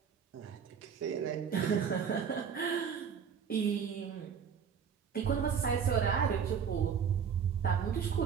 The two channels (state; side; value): quieter; left; 7.1 dB